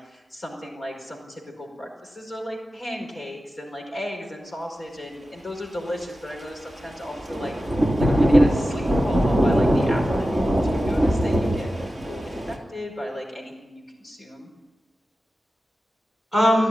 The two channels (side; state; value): both; normal; correlation 0.93